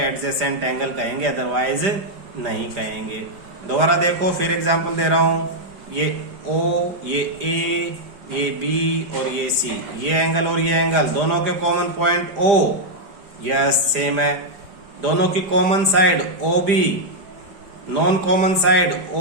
एंगल कहेंगे, अदरवाइज नहीं कहेंगे। दोबारा देखो, फिर एग्जांपल दे रहा हूं, ये O, ये A, ये B और ये C, ये एंगल और ये एंगल दोनों के common point O, yes same है। दोनों की common side OB, non common side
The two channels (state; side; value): late; left; 5.0 ms